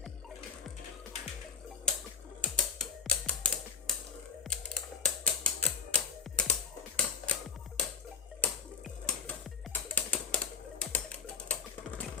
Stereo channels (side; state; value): right; quieter; 6.1 dB